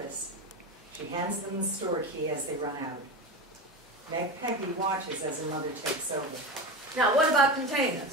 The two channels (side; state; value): both; normal; correlation 0.23